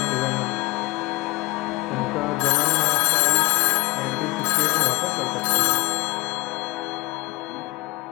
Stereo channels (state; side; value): quieter; right; 23.0 dB